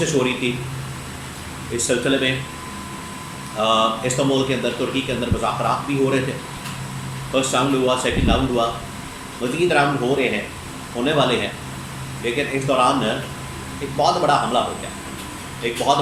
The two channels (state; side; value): identical; both; correlation 1.00